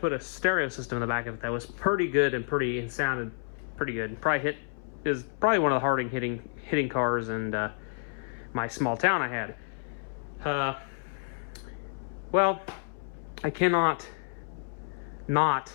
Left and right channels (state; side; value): silent; right; 58 dB below the other